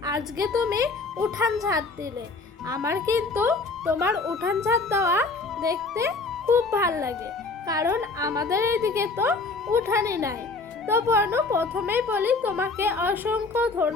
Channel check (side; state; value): right; quieter; 3.8 dB